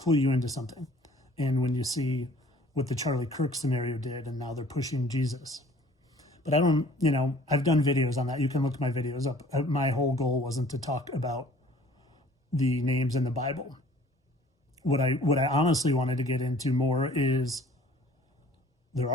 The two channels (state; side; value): normal; both; correlation 0.52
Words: you into something. And when you see what the Charlie Kirk scenario did, and now they're pushing Jesus. But I've done videos on that. You can look my videos up. My whole goal wasn't to talk about the names in the Bible. What I honestly wanted to get into more is there